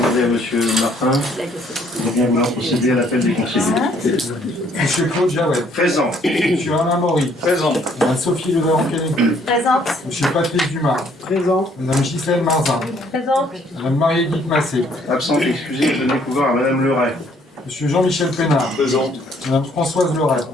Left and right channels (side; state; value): both; normal; correlation 0.64